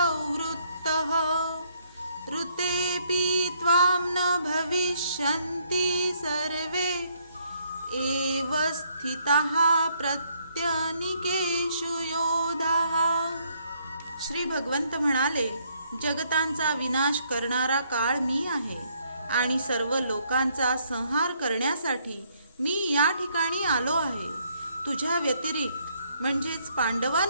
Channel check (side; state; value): both; inverted; correlation -0.69